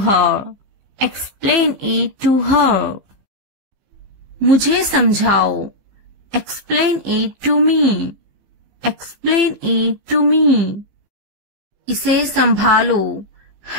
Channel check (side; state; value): left; late; 15 ms